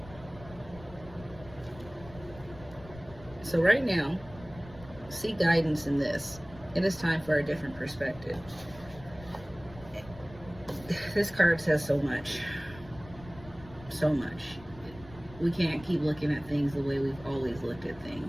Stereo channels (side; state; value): left; noise; rumble, 18 dB below the sound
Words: So right now, seek guidance in this. It is time for a different perspective. This card says so much. So much. We can't keep looking at things the way we've always looked at